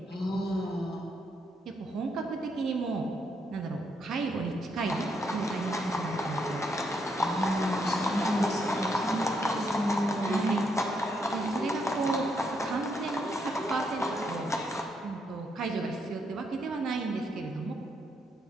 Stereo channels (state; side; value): normal; both; correlation 0.76